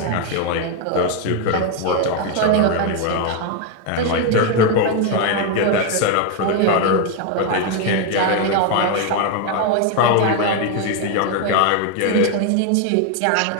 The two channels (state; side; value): different; both; correlation 0.01